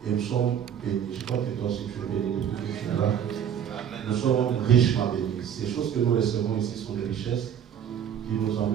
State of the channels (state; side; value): quieter; left; 9.0 dB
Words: et nous sommes bénis. Je crois que toi aussi tu es béni depuis que tu es là. Nous sommes richement bénis. Ces choses que nous recevons ici sont des richesses qui nous